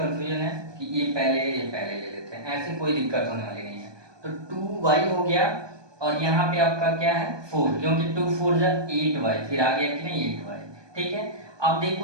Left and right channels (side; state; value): left; late; 1.2 ms